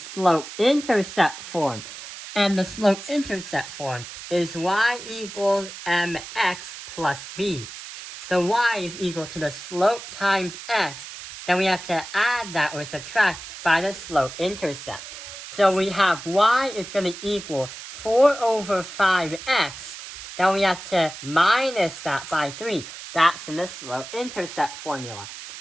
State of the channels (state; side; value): noise; right; hiss, 12 dB below the sound